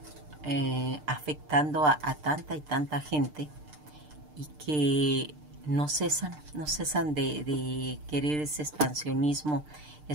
afectando a tanta y tanta gente y que no cesan de querer ese expansionismo,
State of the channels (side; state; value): left; late; 6.7 ms